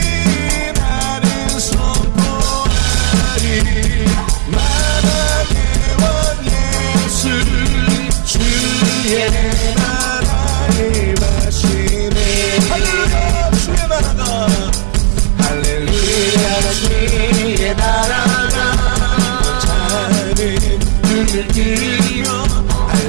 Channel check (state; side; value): silent; left; digital silence